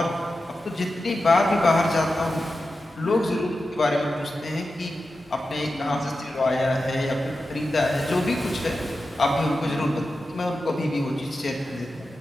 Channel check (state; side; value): normal; both; correlation 0.92